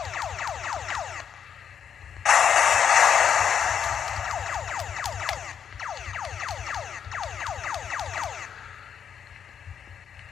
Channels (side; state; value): right; quieter; 7.8 dB